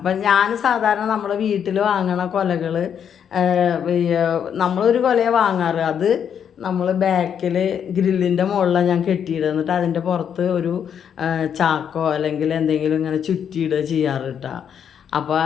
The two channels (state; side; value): quieter; right; 8.2 dB